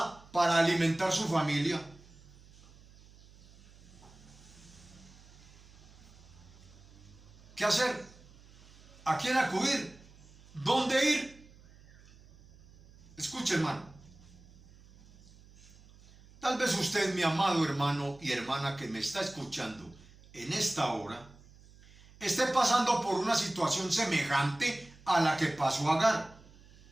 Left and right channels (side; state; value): right; noise; hum, 24 dB below the sound